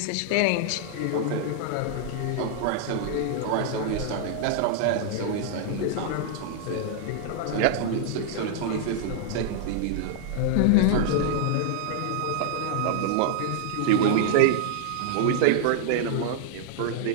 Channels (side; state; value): both; different; correlation -0.01